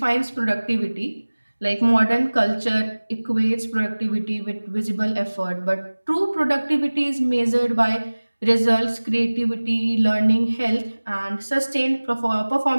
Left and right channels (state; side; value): inverted; both; correlation -1.00